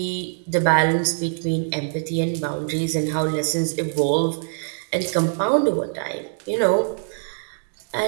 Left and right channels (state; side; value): silent; left; digital silence